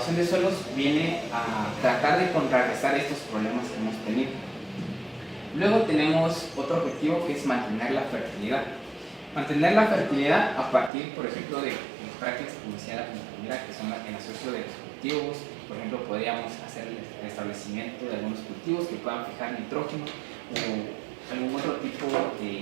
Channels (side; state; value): left; drops out; at 10.9 s